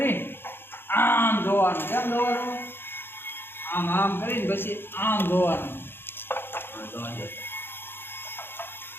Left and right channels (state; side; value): late; right; 0.10 ms